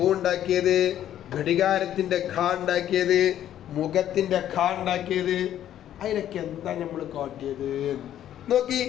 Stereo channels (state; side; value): quieter; right; 11.3 dB